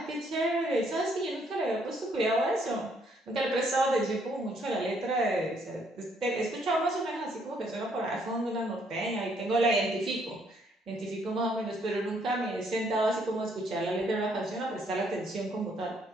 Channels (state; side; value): normal; both; correlation 0.69